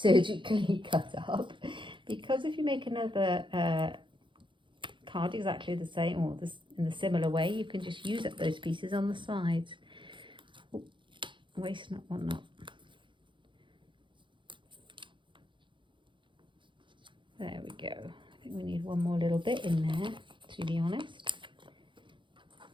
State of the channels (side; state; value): left; late; 0.24 ms